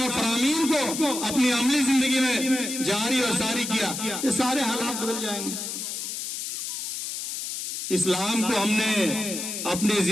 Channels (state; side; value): noise; left; hiss, 5 dB below the sound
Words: اور فرامین کو اپنی عملی زندگی میں جاری اور ساری کیا, یہ سارے حالات بدل جائیں گے. اسلام کو ہم نے اپنی